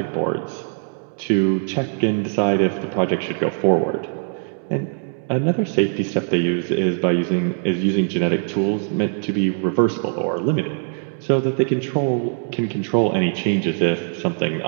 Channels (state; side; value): silent; left; 57 dB below the other